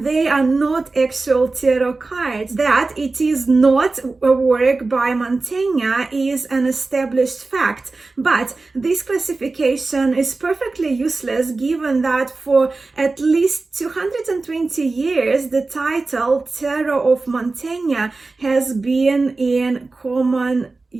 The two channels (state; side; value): quieter; left; 3.6 dB